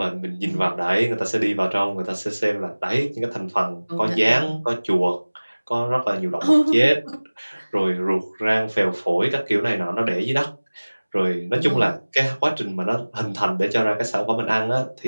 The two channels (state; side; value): inverted; both; correlation -1.00